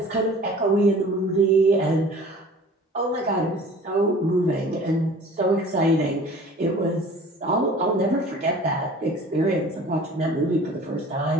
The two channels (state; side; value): normal; both; correlation 0.45